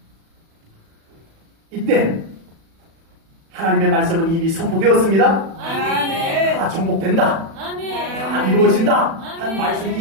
이때 하나님의 말씀은 이미 선포되었습니다. 아멘. 다 정복된다. 아멘. 다 이루어진다. 한 아멘. 말씀이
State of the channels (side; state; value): left; late; 36 ms